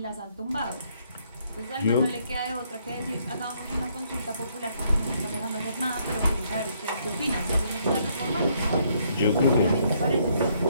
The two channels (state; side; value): inverted; both; correlation -0.70